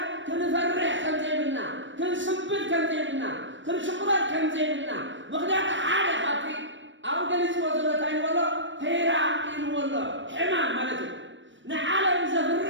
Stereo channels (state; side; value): late; left; 0.55 ms